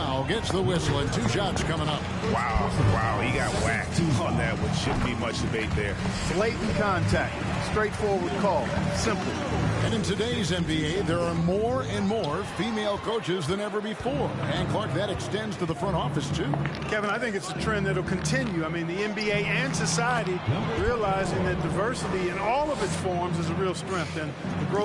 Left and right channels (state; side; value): identical; both; correlation 1.00